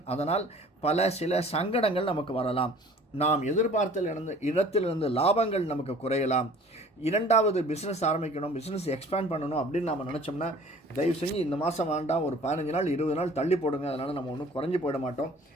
அதனால் சில சங்கடங்கள் நமக்கு வரலாம். நாம் எதிர்பார்த்த இடத்திலிருந்து லாபங்கள் நமக்கு குறையலாம். இரண்டாவது பிஸ்னஸ் ஆரம்பிக்கணும், பிஸ்னஸ் எக்ஸ்பேண்ட் பண்ணணும் அப்படின்னு நம்ம நினச்சோம்னா தயவு செஞ்சு இந்த மாதம் வேண்டாம், ஒரு 15 நாள் 20 நாள் தள்ளி போடுங்க. அதனால் நம்ம ஒன்றும் குறைஞ்சி போயிட மாட்டோம்.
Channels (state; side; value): normal; both; correlation 0.49